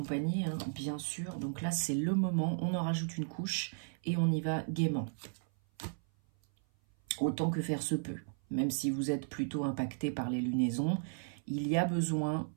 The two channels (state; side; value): silent; left; 55 dB below the other